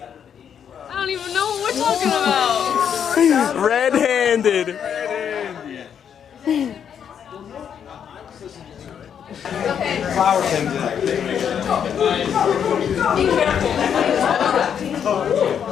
I don't even know what we're talking about. Red-handed. Flower comes in. Be careful.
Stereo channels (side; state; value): right; quieter; 8.2 dB